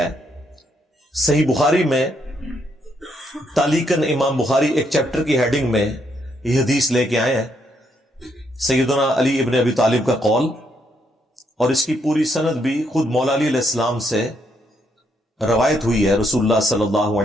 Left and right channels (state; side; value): normal; both; correlation 0.75